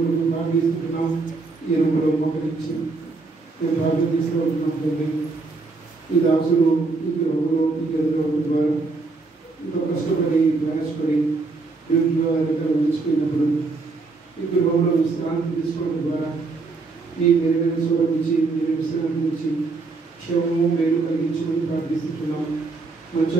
ప్రార్థిస్తున్నాం. ఈ రూపంలో మోకరించి మేము ప్రార్థన తీసుకుంటున్నాం తండ్రి. ఈ దాసులు ఈ గృహంలో ఈ గదిలో ద్వారా ఎంతో కష్టపడి ప్రయాసపడి ఇంట్లో దగ్గర ఉంచిపోయినప్పుడు ఈ గృహంలో విశ్రాంతి తీసుకోవడం ద్వారా ఈ మెరుగైన స్వరించి మీరు విశ్రాంతి నుంచి క్షేమము మేలు కలిగించమని ప్రార్థిస్తున్నాం. మంచి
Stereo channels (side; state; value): left; quieter; 3.8 dB